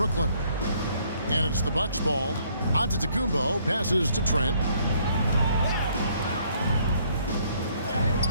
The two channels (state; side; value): inverted; both; correlation -0.65